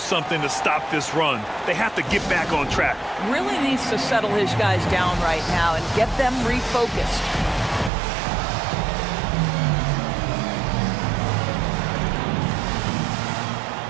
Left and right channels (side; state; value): left; drops out; at 7.9 s